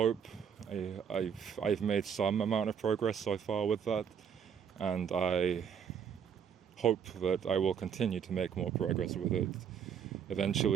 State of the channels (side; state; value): left; quieter; 7.7 dB